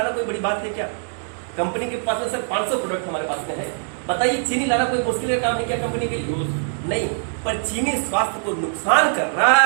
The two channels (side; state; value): left; silent; 63 dB below the other